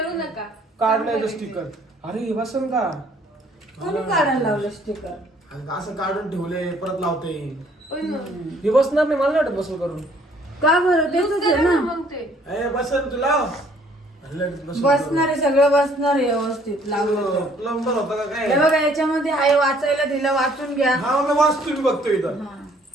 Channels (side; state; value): both; normal; correlation 0.61